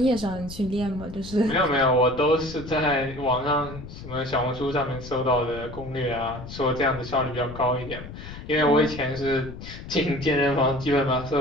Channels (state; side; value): noise; left; rumble, 12 dB below the sound